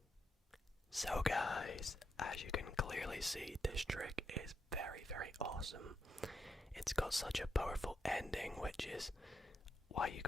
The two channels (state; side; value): normal; both; correlation 0.82